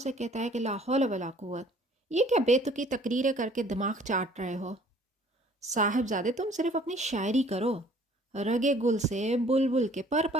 کہتا ہے کہ لا حول ولا قوت، یہ کیا بے تکی تقریریں کر کے دماغ چاٹ رہے ہو؟ صاحبزادے تم صرف اپنی شاعری کرو، رگے گل سے بلبل کے پر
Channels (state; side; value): normal; both; correlation 0.55